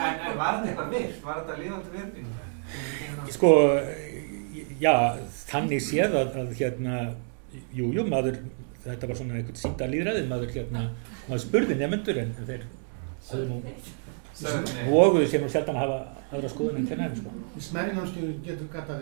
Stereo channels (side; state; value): left; silent; 57 dB below the other